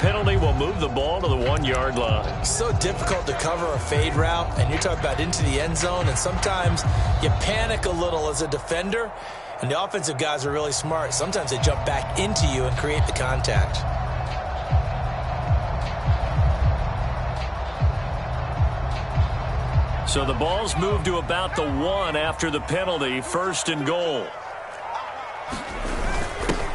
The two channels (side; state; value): both; identical; correlation 1.00